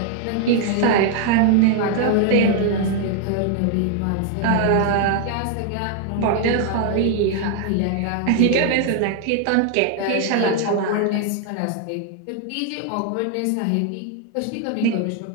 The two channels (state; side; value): different; both; correlation 0.00